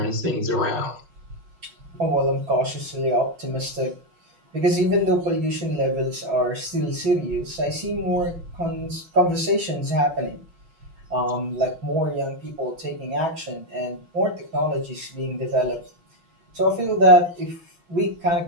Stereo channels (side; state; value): left; late; 6.0 ms